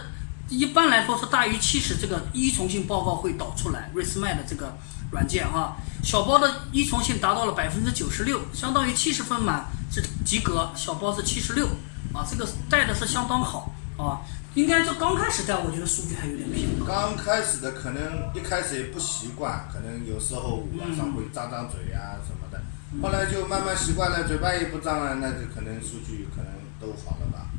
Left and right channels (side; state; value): right; silent; digital silence